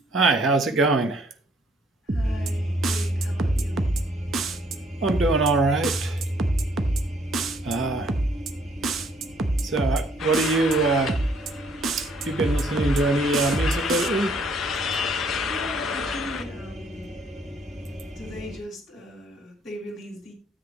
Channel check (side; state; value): both; normal; correlation 0.64